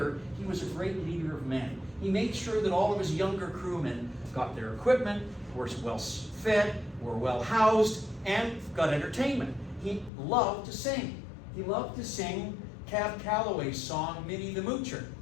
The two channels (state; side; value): drops out; right; at 10.1 s